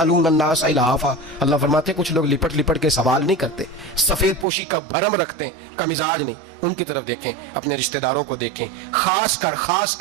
الناس الہافا، اللہ فرماتے ہیں کچھ لوگ لپٹ لپٹ کے سوال نہیں کرتے، سفید پوشی کا بھرم رکھتے ہیں، کا مزاج نہیں۔ ان کی طرف دیکھیں، اپنے رشتہ داروں کو دیکھیں، خاص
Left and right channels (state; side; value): drops out; left; at 4.5 s